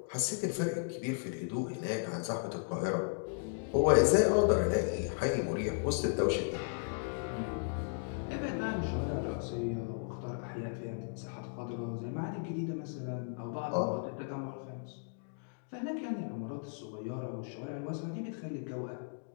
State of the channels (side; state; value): right; silent; digital silence